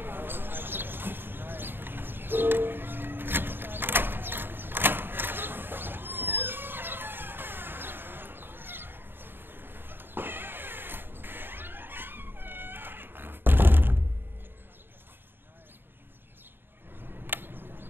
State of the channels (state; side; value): late; left; 0.099 ms